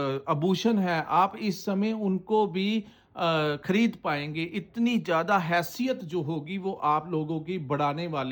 आभूषण है, आप इस समय उनको भी खरीद पाएंगे। इतनी ज़्यादा हैसियत जो होगी वो आप लोगों की बढ़ाने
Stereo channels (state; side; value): identical; both; correlation 1.00